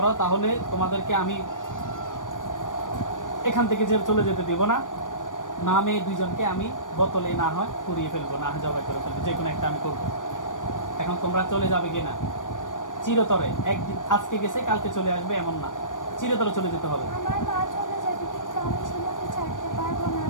তাহলে তোমাদেরকে আমি এখান থেকে চলে যেতে দিব না। না মেয়ে দুইজনকে আমি বোতলে না হয় পুড়িয়ে ফেলবো, না হয় জবাই করে ফেলবো, যে কোনো একটা আমি করবো। এখন তোমরা চলে যাবে কিনা? চিরতরে একদিন, আজকে গেছে কালকে চলে আসবে এমন না, চিরতরে চলে যেতে হবে। আমার মা চলে যাবে, কিন্তু আমি শিমুকে ছাড়তে পারবো না।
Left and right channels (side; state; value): right; late; 0.88 ms